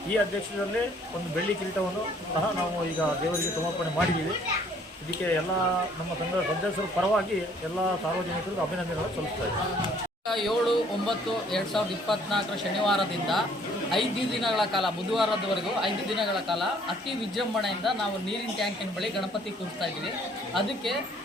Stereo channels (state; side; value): normal; both; correlation 0.60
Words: ಈ ಅಧ್ಯಕ್ಷರಲ್ಲಿ ಒಂದು ಬೆಳ್ಳಿ ಕಿರೀಟವನ್ನು ಸಹ ನಾವು ಈಗ ದೇವರಿಗೆ ಸಮರ್ಪಣೆ ಮಾಡಿದ್ದೀವಿ. ಇದಕ್ಕೆ ಎಲ್ಲ ನಮ್ಮ ಸಂಘದ ಸದಸ್ಯರ ಪರವಾಗಿ ಎಲ್ಲ ಸಾರ್ವಜನಿಕರಿಗೂ ಅಭಿನಂದನೆಗಳು ಸಲ್ಲಿಸ್ತಾ ಇದ್ದೀನಿ. 7/9/2024 ಶನಿವಾರದಿಂದ 5 ದಿನಗಳ ಕಾಲ, ಬುಧವಾರದವರೆಗೂ 5 ದಿನಗಳ ಕಾಲ ಅತಿ ವಿಜೃಂಭಣೆಯಿಂದ ನಾವು ನೀರಿನ ಟ್ಯಾಂಕಿನ ಬಳಿ ಗಣಪತಿ ಕೂರಿಸ್ತಾ ಇದ್ದೀವಿ. ಅದಕ್ಕೆ